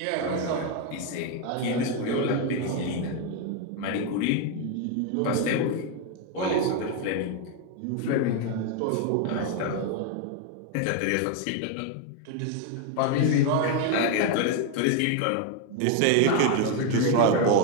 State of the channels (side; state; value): both; different; correlation 0.01